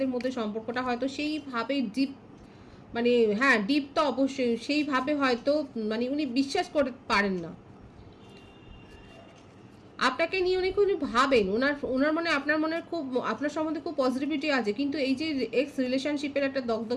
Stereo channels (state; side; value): identical; both; correlation 1.00